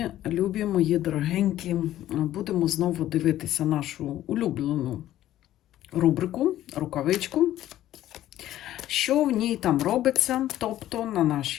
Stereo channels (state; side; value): quieter; right; 13.3 dB